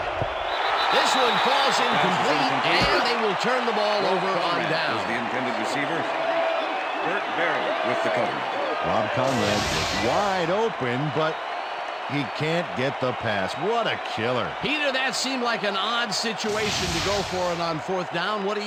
This one falls incomplete, and they will turn the ball over on down. Was the intended receiver. Burt Berry with the cover. Rob Conrad is wide open, but he can't get the pass. What a killer. Peter, that seemed like an odd situation to go for it on fourth down. What do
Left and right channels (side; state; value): both; identical; correlation 1.00